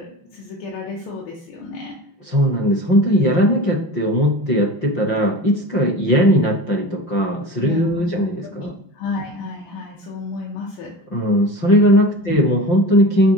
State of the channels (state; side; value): late; right; 5.7 ms